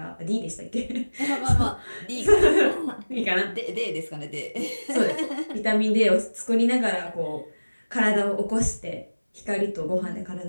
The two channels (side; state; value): both; inverted; correlation -1.00